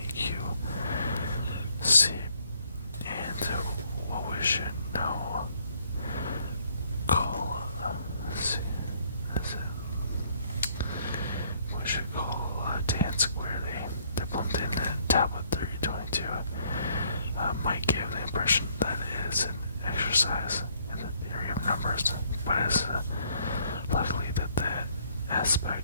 Q, C, and what we should now call tan squared A. The Plimpton tablet 322 might give the impression that it is an exercise in the theory of numbers, but it's likely that the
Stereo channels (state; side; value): inverted; both; correlation -0.66